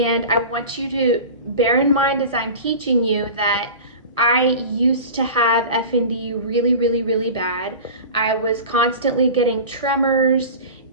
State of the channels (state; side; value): inverted; both; correlation -0.34